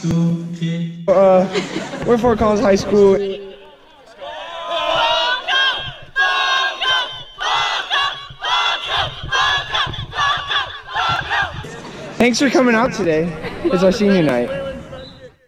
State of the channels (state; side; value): identical; both; correlation 1.00